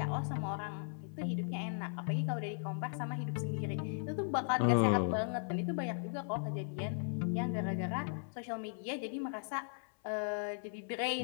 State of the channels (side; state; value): right; silent; 53 dB below the other